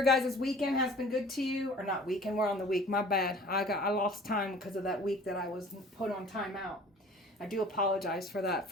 guys' weekend has been good to you. Or not weekend, we're on the week. My bad. I lost time because of that week that I was put on timeout. I do apologize for that,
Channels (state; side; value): normal; both; correlation 0.47